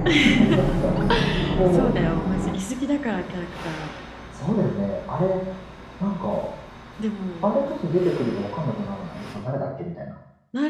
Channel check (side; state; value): both; identical; correlation 1.00